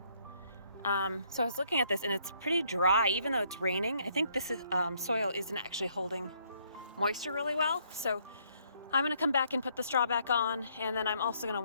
So I was looking at this and it's pretty dry, even though it's raining. I think this is, soil isn't actually holding moisture really well. So I'm gonna come back and put the straw back on, and then I'm also gonna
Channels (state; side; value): inverted; both; correlation -0.68